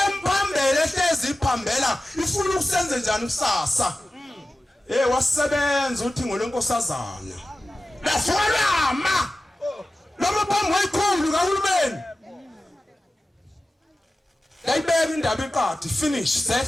ehlezi iphambela ifuna ukusenze njani kusasa wasebenza uthi ngolenkosazana lafolama noma phambi kwayikhulu kahulumeni yayibeka indaba iqadi finish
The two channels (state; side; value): normal; both; correlation 0.95